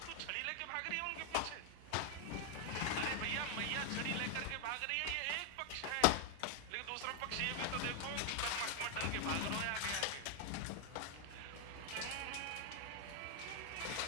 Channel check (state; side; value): different; both; correlation 0.00